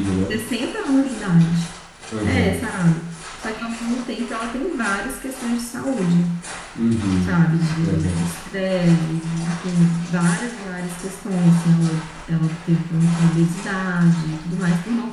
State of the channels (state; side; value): identical; both; correlation 1.00